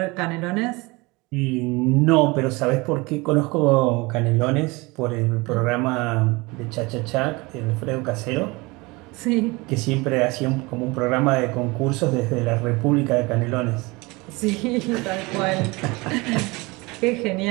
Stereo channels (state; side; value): quieter; left; 24.4 dB